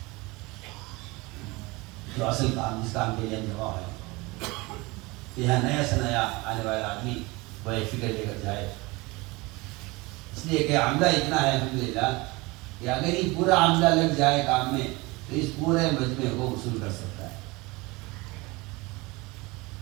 جو اصل کام، جس کام کے لیے ہم جمع ہے، یہاں نیا سے نیا آنے والا آدمی وہ ایک فکر لے کر جائے. اس لیے کہ عملہ اتنا ہے الحمدللہ کہ اگر یہ پورا عملہ لگ جائے کام میں تو اس پورے مجمع کو وصول کر سکتا ہے.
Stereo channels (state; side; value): quieter; left; 23.8 dB